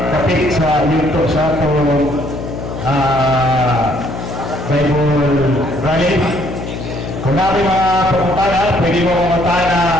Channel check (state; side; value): noise; left; hum, 8 dB below the sound